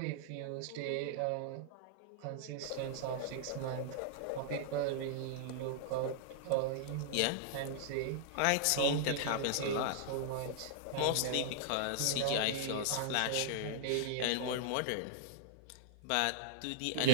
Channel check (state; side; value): different; both; correlation -0.01